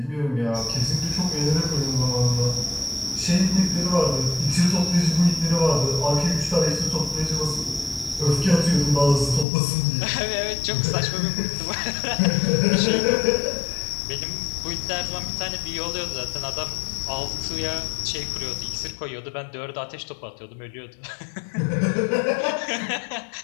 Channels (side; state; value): right; drops out; at 9.5 s